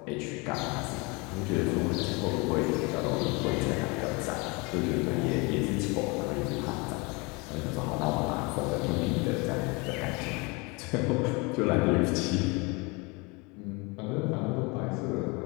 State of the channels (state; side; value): quieter; right; 27.8 dB